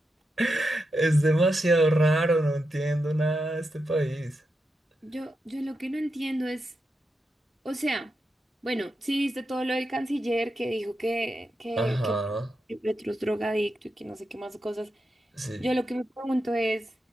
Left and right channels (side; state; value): both; normal; correlation 0.87